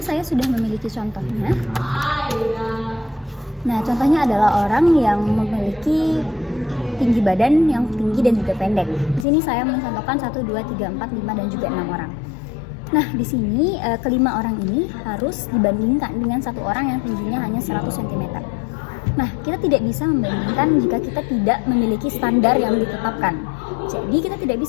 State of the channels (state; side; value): drops out; right; at 9.2 s